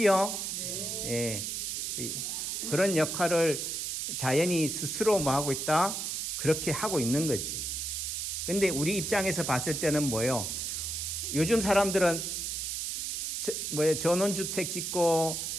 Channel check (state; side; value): noise; right; hiss, 3 dB below the sound